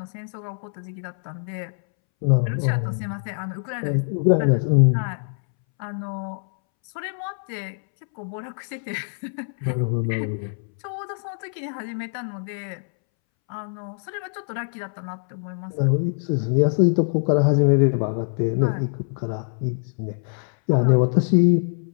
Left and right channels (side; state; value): right; silent; 63 dB below the other